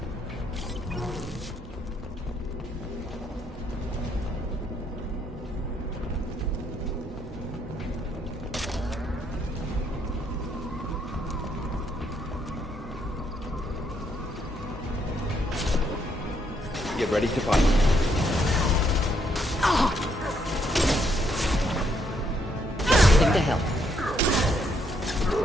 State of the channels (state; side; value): normal; both; correlation 0.73